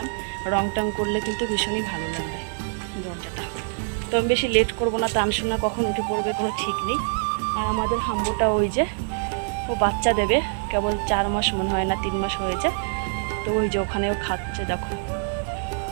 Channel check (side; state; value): left; silent; 62 dB below the other